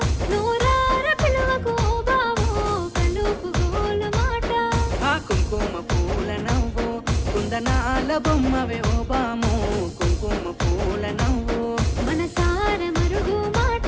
నూరార పిలువకు ఓ బావో కలుపు గోలు మాట ఆ కుంకుమ పూల నవ్వు కుందనాల బొమ్మవే ఓ బాము కుంకుమ పూల నవ్వు మనసార మరుగు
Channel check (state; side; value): identical; both; correlation 1.00